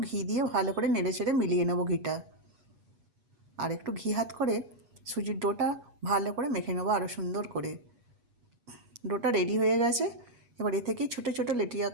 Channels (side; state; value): left; late; 8.3 ms